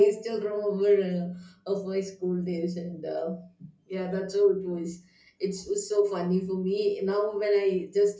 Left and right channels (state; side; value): identical; both; correlation 1.00